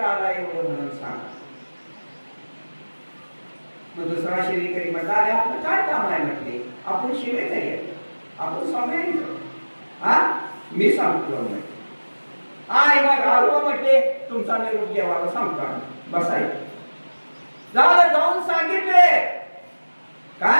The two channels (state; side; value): inverted; both; correlation -1.00